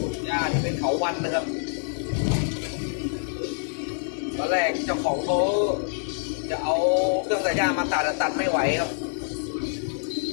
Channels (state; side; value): silent; right; digital silence